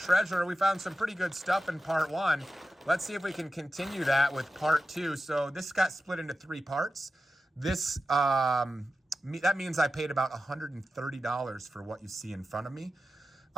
We found some pretty good stuff in part 1. Let's see if we can continue that with part 2. So this got split into 3 parts. This, that means I paid about $130 for what you see in front of me.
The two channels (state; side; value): normal; both; correlation 0.92